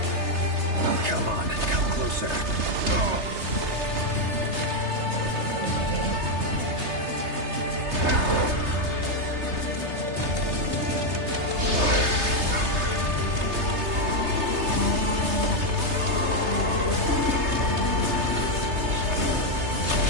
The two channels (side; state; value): left; late; 3.3 ms